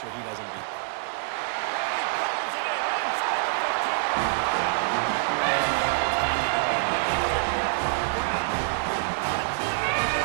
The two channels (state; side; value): silent; left; digital silence